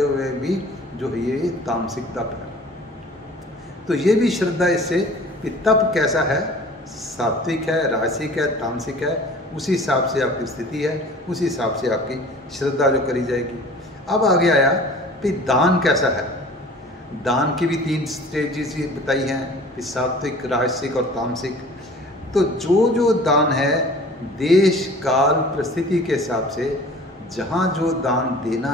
हुए भी जो है ये तामसिक तप है। तो ये भी श्रद्धा इससे कि तप कैसा है, सात्विक है, राजसिक है, तामसिक है, उसी हिसाब से आपकी स्थिति है, उसी हिसाब से आपकी श्रद्धा जो करी जाएगी। अब आगे आया कि दान कैसा है। दान की भी 3 स्टेजेस बताई हैं कि सात्विक, राजसिक और तामसिक। तो जो दान है देश काल परिस्थिति के हिसाब से, जहाँ जो दान देना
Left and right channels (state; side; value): normal; both; correlation 0.45